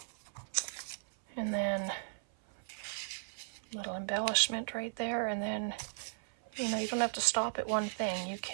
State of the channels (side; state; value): left; silent; 54 dB below the other